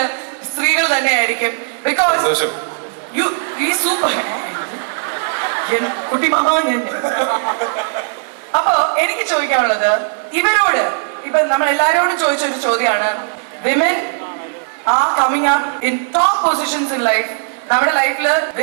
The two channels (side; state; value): left; silent; 68 dB below the other